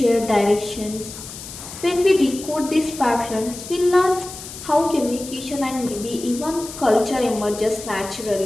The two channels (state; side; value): noise; left; hiss, 12 dB below the sound